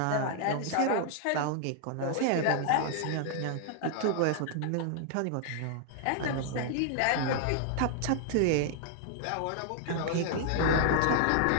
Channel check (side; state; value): both; different; correlation -0.01